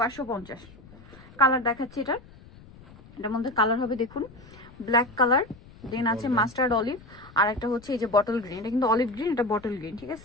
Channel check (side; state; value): left; noise; rumble, 21 dB below the sound